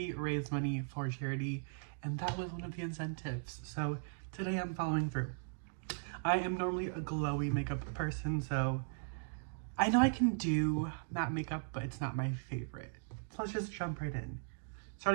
raised money for charity and that was one of the incentives. So today I'm following through. I am normally a glowy makeup person, so I know I can do matte makeup, but it's not my favorite. So let's just jump right in.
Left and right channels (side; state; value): left; silent; digital silence